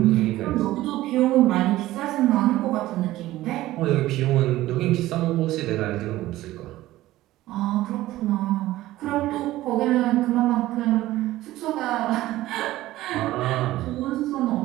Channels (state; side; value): quieter; left; 16.1 dB